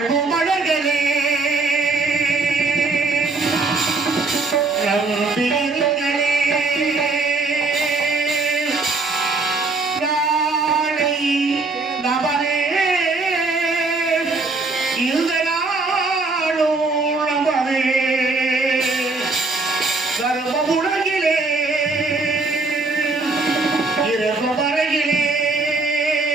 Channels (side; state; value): left; quieter; 3.6 dB